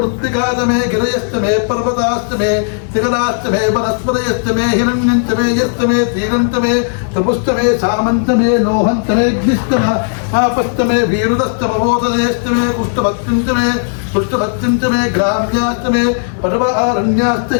गिरयस्तमे पर्वतास्तमे शिखरास्तमे वनस्पतयस्तमे हिरण्यन्तमे यस्तमे तीरन्तमे तपुस्तमे सामन्तमे लोहन्तमे अग्निस्तम आपस्तमे वीरुदस्तमवोदयस्तमे कुष्ठभक्तिन्तमे पुष्टभक्तिन्तमे ग्राम्यास्तमे पर्वारण्यास्त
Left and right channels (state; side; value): silent; right; digital silence